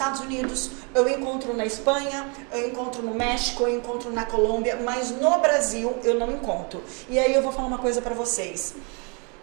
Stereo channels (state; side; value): quieter; left; 33.9 dB